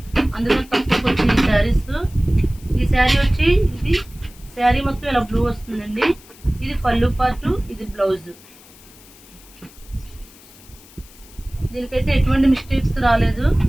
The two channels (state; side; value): noise; left; hiss, 23 dB below the sound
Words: అందుకని తక్కువకి వచ్చిన ఈ సారీస్। ఈ సారీ వచ్చి ఇది సారీ మొత్తం ఇలా బ్లూ వస్తుందండి। ఇది పళ్ళు పార్ట్, ఇది బ్లౌజ్। దీనికైతే ఎటువంటి మిస్టేక్స్ రాలేదు,